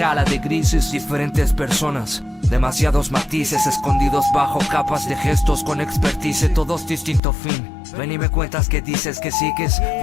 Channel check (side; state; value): right; drops out; at 7.2 s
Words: de grises. Diferentes personas, demasiados matices escondidos bajo capas de gestos con expertise, todos distinto fin. Ven y me cuentas que dices que sigues,